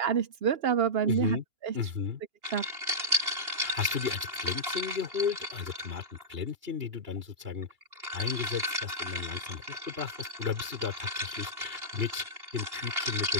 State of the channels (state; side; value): late; left; 2.8 ms